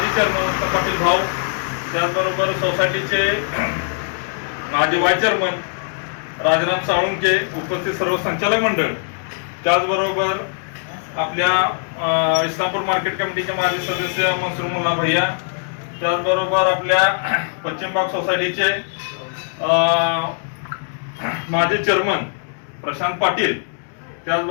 चेअरमन पाटील भाऊ, त्याचबरोबर सोसायटीचे माजी व्हाईस चेअरमन राजाराम साळुंखे, उपस्थित सर्व संचालक मंडळ, त्याचबरोबर आपल्या इस्लामपूर मार्केट कमिटीचे माजी सदस्य मनसूर मुल्ला भैया, त्याचबरोबर आपल्या पश्चिम भाग सोसायटीचे माजी चेअरमन प्रशांत पाटील,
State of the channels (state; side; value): silent; right; 65 dB below the other